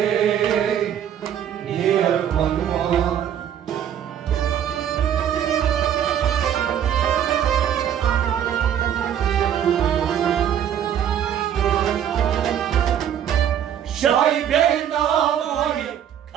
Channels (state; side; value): quieter; left; 9.6 dB